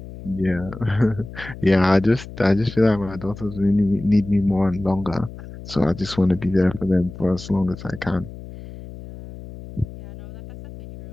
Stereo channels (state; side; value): noise; left; hum, 14 dB below the sound